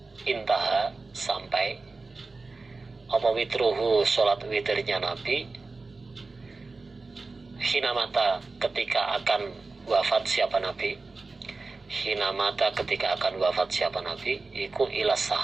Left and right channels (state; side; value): quieter; left; 3.7 dB